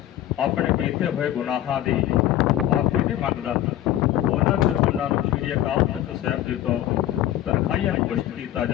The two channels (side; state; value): right; quieter; 13.0 dB